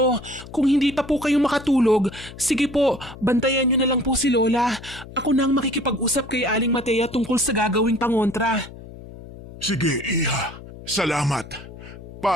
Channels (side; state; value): left; noise; hum, 16 dB below the sound